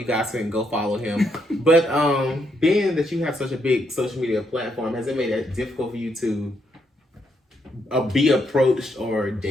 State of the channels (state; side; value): normal; both; correlation 0.76